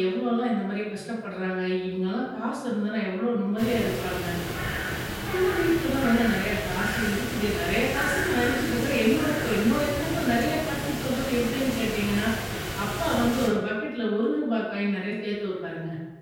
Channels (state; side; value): identical; both; correlation 1.00